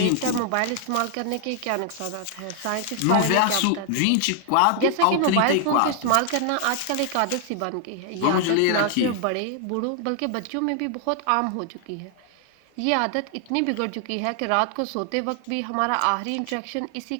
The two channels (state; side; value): different; both; correlation 0.00